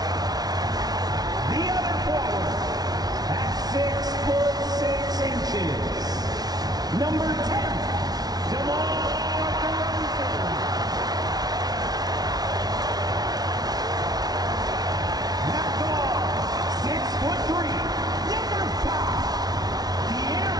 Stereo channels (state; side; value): late; left; 0.19 ms